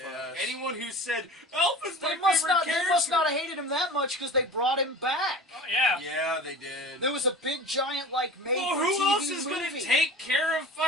Yes. Anyone who said Alpha's my They must favorite not. character. They must not have hated him that much because they brought him back. Oh, yeah. Yeah, they did. There was a big giant like made Well, for who TV else is movie. going to take care of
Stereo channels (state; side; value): normal; both; correlation 0.37